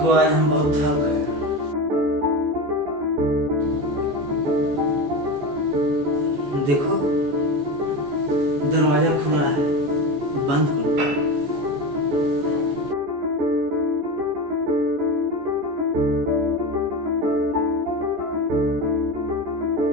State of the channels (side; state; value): left; late; 14 ms